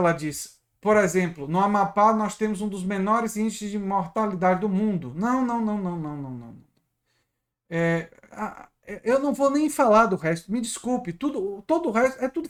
disse. Por exemplo, no Amapá nós temos um dos menores índices de mortalidade do mundo. Não. Eu não vou nem falar do resto. Me desculpe. Todo o resto é tudo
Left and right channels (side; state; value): both; identical; correlation 1.00